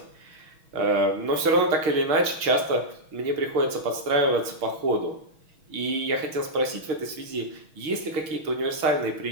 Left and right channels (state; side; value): late; left; 6.3 ms